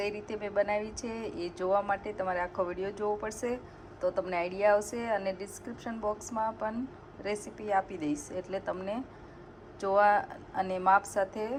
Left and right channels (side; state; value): both; identical; correlation 1.00